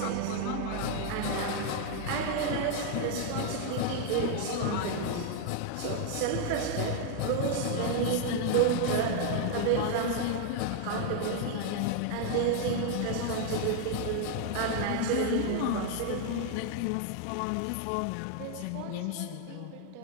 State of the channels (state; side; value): different; both; correlation 0.00